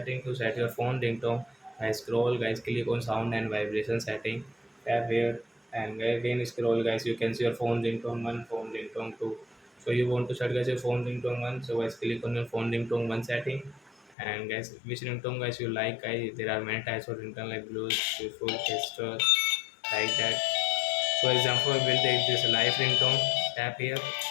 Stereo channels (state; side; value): drops out; right; at 14.2 s